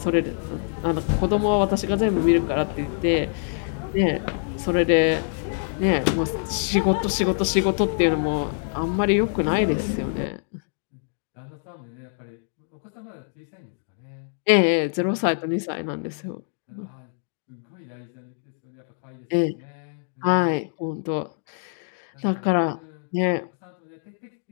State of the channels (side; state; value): right; silent; digital silence